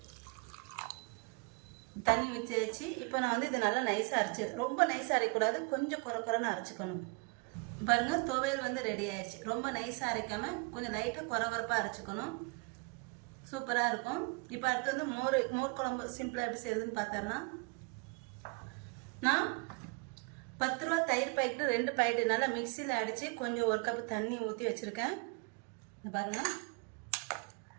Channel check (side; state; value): left; quieter; 32.0 dB